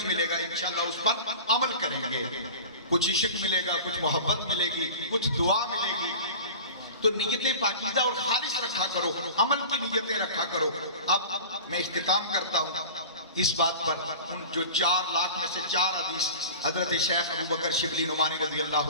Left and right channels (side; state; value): both; inverted; correlation -0.35